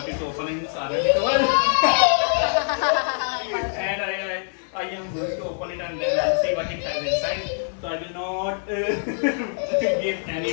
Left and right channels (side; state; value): right; silent; 60 dB below the other